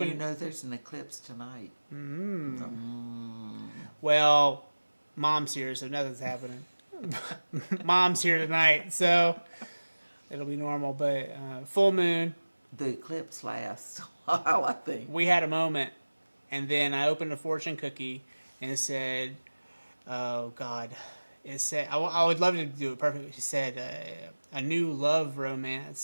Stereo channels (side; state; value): both; inverted; correlation -1.00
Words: you know there's an eclipse tonight. Well, Mom's here, so nothing's happening. Mom's here tonight, so it'll be normal. But full moon, The eclipse lasts a while, I think. we had a moment, and then I opened a fortune cookie, and it said, "Oh God." It said, I would love to do it perfectly. It said, a new love